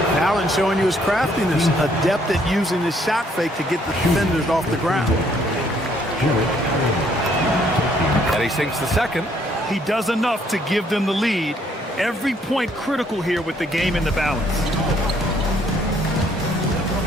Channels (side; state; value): both; normal; correlation 0.66